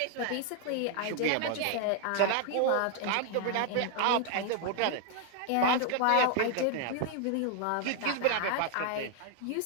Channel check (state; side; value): different; both; correlation 0.00